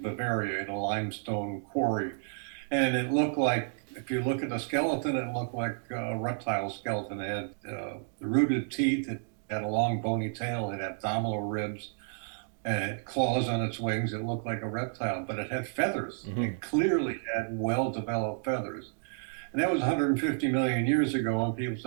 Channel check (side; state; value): left; silent; digital silence